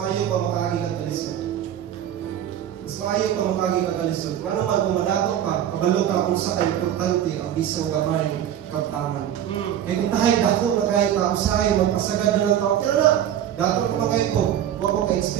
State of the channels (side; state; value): left; quieter; 10.6 dB